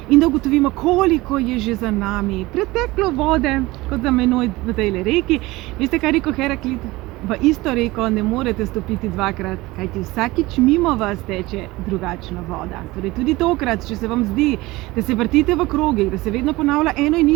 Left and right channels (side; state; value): left; quieter; 20.2 dB